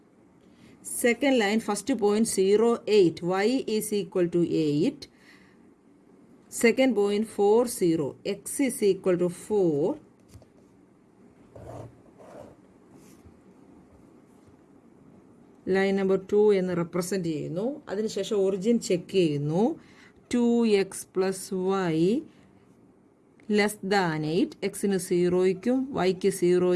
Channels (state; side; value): identical; both; correlation 1.00